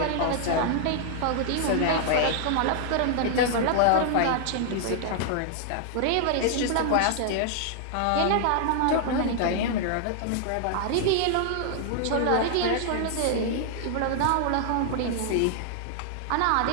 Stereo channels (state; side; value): different; both; correlation 0.00